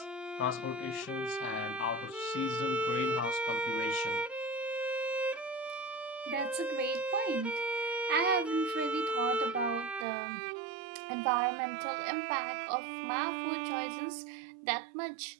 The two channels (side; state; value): left; drops out; at 10.1 s